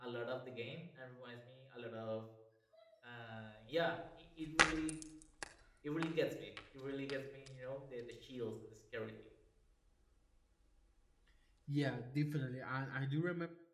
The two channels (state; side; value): identical; both; correlation 1.00